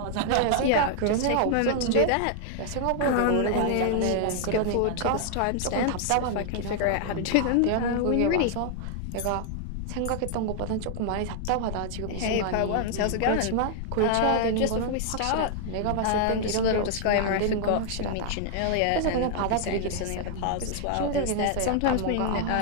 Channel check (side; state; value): both; different; correlation 0.00